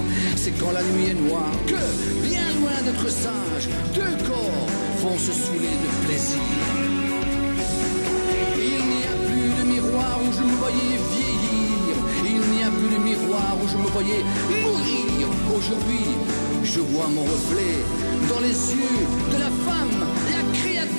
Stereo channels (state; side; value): inverted; both; correlation -1.00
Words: C'est quand la nuit est noire que, bien loin d'être sage, deux corps vont se saouler de plaisir. Il n'y a plus de miroir où je me voyais vieillir. Il n'y a plus de miroir où je me voyais mourir. Aujourd'hui, je vois mon reflet dans les yeux de la femme, la